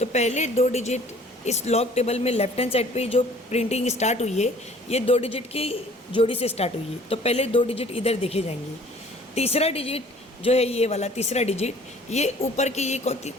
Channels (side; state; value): both; normal; correlation 0.52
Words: पहले 2 डिजिट इस लॉग टेबल में लेफ्ट हैंड साइड पे जो प्रिंटिंग स्टार्ट हुई है ये 2 डिजिट की जोड़ी से स्टार्ट हुई है, तो पहले 2 डिजिट इधर देखे जाएंगे। तीसरा डिजिट जो है ये वाला तीसरा डिजिट ये ऊपर के ये